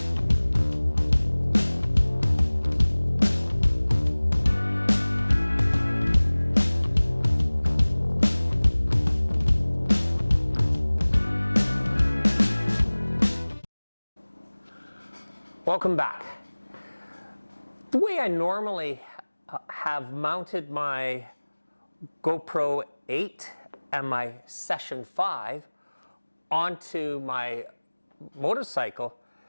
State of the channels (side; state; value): both; inverted; correlation -1.00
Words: Welcome back. The way I normally have mounted my GoPro 8 and my Session 5 onto my motorcycle